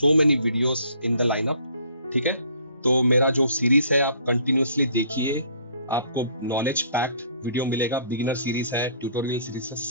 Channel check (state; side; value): inverted; both; correlation -0.58